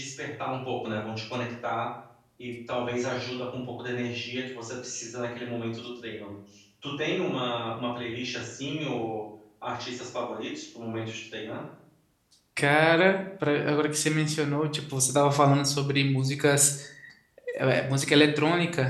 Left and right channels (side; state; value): both; identical; correlation 1.00